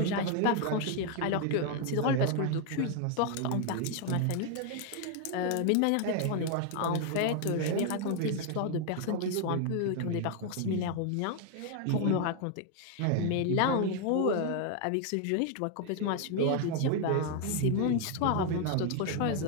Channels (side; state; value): both; different; correlation 0.00